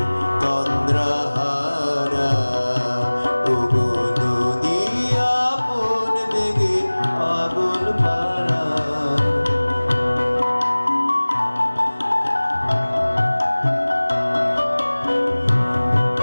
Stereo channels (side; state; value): both; inverted; correlation -1.00